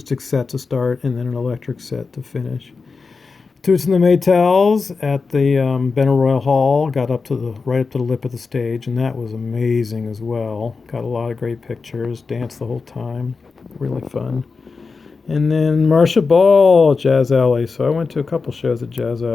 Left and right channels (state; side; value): quieter; right; 4.6 dB